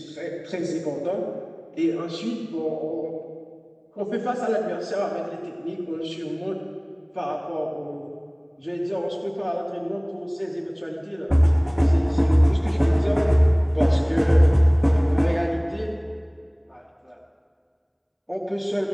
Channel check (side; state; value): both; identical; correlation 1.00